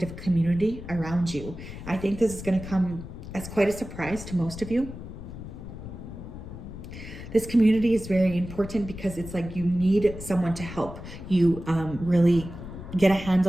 community around you. I think this is going to come as quite a surprise to most of you. This community is very important because it's like you need someone to help you really get a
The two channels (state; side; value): noise; left; rumble, 11 dB below the sound